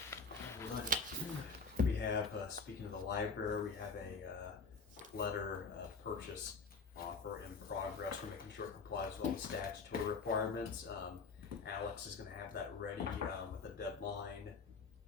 We have, speaking of the library, we have a letter of purchase offer in progress. We're making sure it complies with all the statutory requirements. Alex is gonna have that ready with a deadline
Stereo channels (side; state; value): right; quieter; 4.4 dB